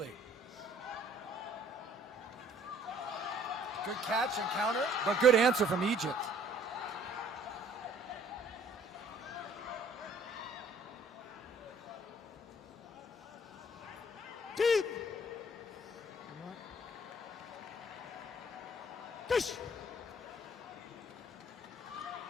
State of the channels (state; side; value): normal; both; correlation 0.58